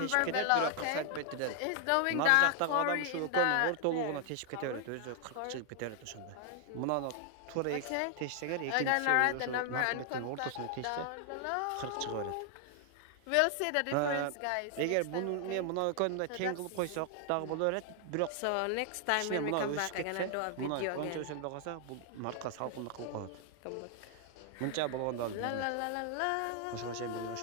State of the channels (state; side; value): different; both; correlation 0.00